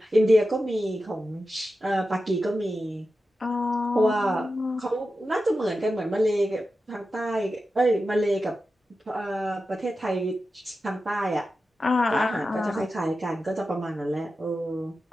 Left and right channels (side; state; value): both; normal; correlation 0.92